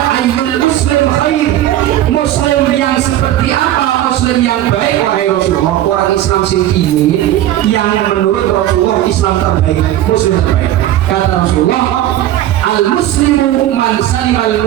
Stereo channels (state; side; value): quieter; left; 13.3 dB